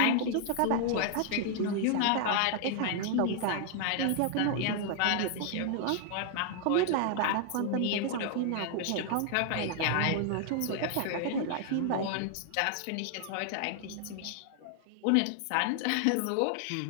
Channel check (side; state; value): both; different; correlation 0.00